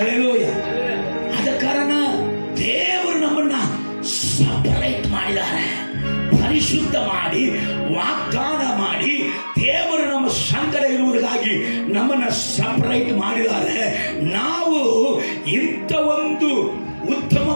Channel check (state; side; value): inverted; both; correlation -1.00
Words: ಆದ ಕಾರಣ ದೇವರು ನಮ್ಮನ್ನ ಸಪರೇಟ್ ಮಾಡಿದ್ದಾರೆ, ಪರಿಶುದ್ಧ ಮಾಡಿ, ವಾಗ್ದಾನ ಮಾಡಿ, ದೇವರು ನಮ್ಮ ಸಂಗಡ ಇರುವುದಕ್ಕಾಗಿ ನಮ್ಮನ್ನ ಸಪರೇಟ್ ಮಾಡಿದ್ದಾರೆ. ನಾವು ಇಂಥ ಒಂದು